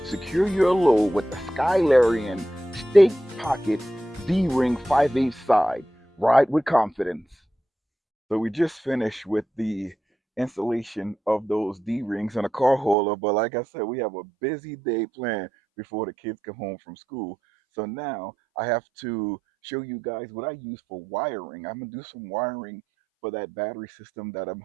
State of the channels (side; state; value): left; drops out; at 13.0 s